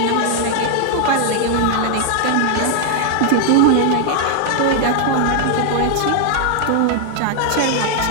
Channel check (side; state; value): both; different; correlation 0.00